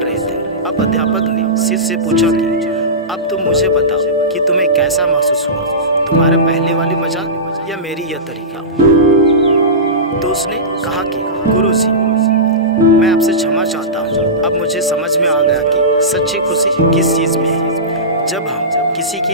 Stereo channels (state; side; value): normal; both; correlation -0.19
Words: थे। अब अध्यापक ने शिष्य से पूछा कि अब तुम मुझे बताओ कि तुम्हें कैसा महसूस हुआ, तुम्हारे पहले वाली मजाक या मेरी यह तरीका। तो उसने कहा कि गुरुजी, मैं आपसे क्षमा चाहता हूँ। अब मुझे समझ में आ गया कि सच्ची खुशी किस चीज़ में है। जब हम किसी